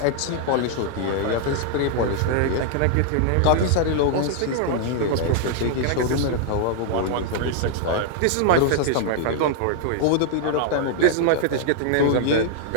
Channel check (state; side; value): different; both; correlation 0.00